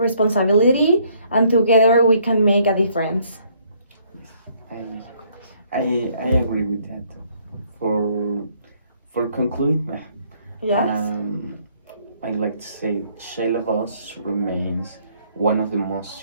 and together we can make a difference. I I agree with that. For for conclude, Yes? I'd like to say child abuse remains one of the most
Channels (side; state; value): both; inverted; correlation -0.66